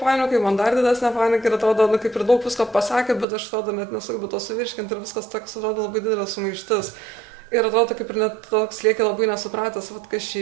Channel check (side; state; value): left; drops out; at 3.2 s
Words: panikai, man dar didesnė panika ir atrodo, kaip ir daug visko pasakė, bet aš atrodo net nesugebu to suvirškinti ir viskas toks atrodo labai didelė sumaištis. Ir atrodo, kaip ir net toks lieki labai nesupratęs, kas